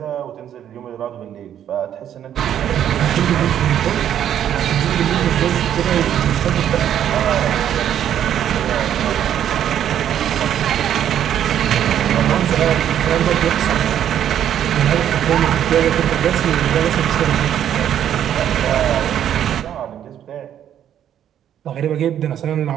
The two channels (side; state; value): left; quieter; 10.2 dB